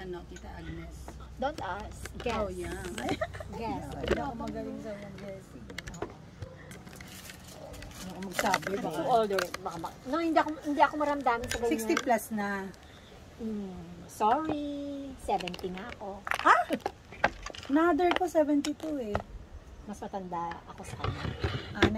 Tita Agnes? Don't ask. Guess. Oh, young. Guess. Hindi ako magaling sa mga guessing. Hindi ako magsabi. Baka too older. No, hindi ako maramdamin sa ganyan. 60 plus na. Sorry. 70 nga ako. Another ko, 72 eh. Mas matanda ako sa kanya.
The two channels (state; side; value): identical; both; correlation 1.00